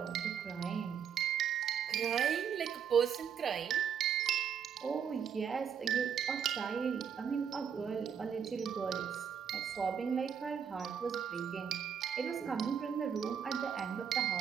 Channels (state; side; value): quieter; left; 7.7 dB